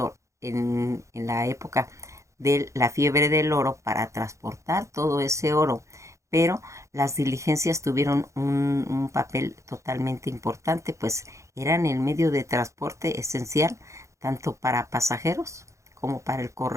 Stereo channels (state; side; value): late; left; 0.15 ms